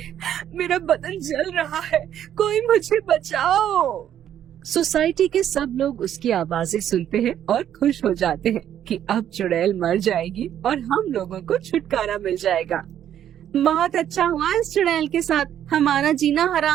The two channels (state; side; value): quieter; left; 10.4 dB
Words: मेरा बदन जल रहा है, कोई मुझे बचाओ। सोसाइटी के सब लोग उसकी आवाजें सुनते हैं और खुश हो जाते हैं कि अब चुड़ैल मर जाएगी और हम लोगों को छुटकारा मिल जाएगा। बहुत अच्छा हुआ इस चुड़ैल के साथ, हमारा जीना